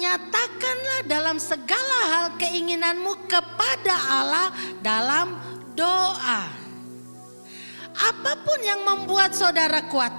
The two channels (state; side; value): inverted; both; correlation -1.00